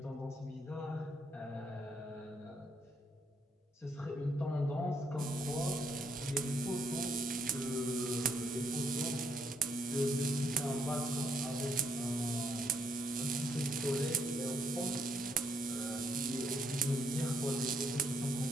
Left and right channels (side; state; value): both; normal; correlation 0.72